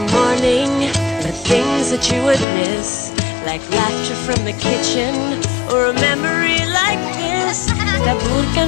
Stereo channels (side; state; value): right; drops out; at 2.5 s